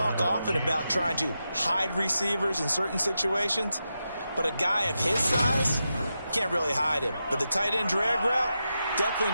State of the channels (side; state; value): both; inverted; correlation -0.88